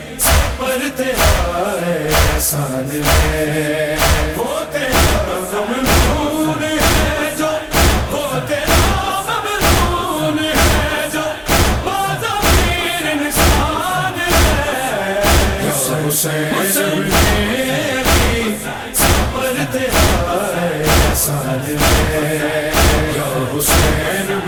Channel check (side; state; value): both; identical; correlation 1.00